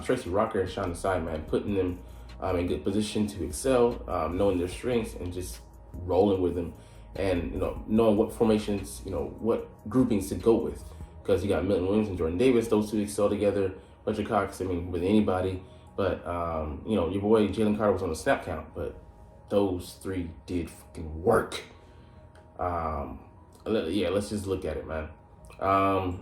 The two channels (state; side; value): identical; both; correlation 1.00